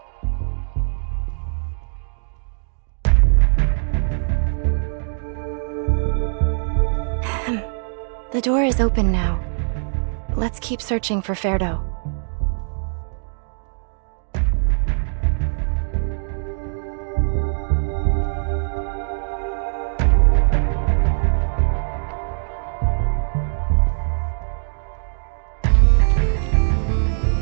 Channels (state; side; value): silent; left; digital silence